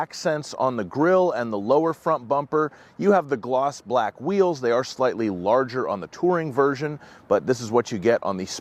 on the grille and the lower front bumper. You have the gloss black wheels. They are slightly larger on the touring version, but this is what you get on the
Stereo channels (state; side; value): identical; both; correlation 1.00